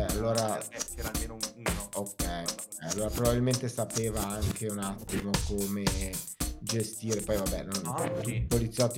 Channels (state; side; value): identical; both; correlation 1.00